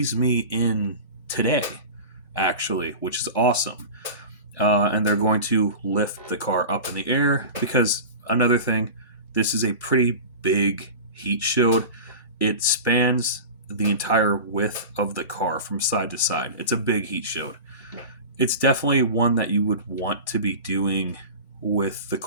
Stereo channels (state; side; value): inverted; both; correlation -0.31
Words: me in today, actually, which is awesome. And they're going to lift the car up in the air because another thing, this is a pretty big heat shield. It spans the entire width of the car from side to side. It's a big heat shield. It's definitely one that you would want to be doing with the